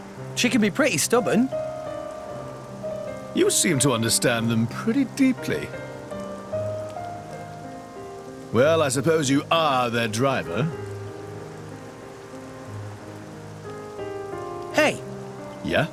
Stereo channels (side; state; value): both; identical; correlation 1.00